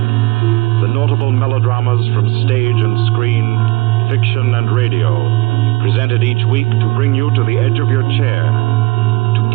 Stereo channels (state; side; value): quieter; left; 23.6 dB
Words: The notable melodramas from stage and screen, fiction and radio, presented each week to bring you to the edge of your chair, to